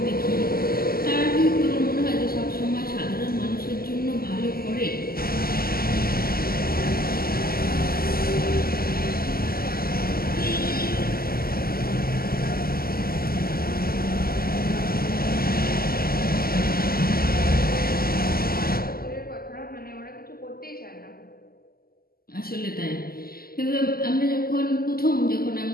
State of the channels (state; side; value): late; right; 0.43 ms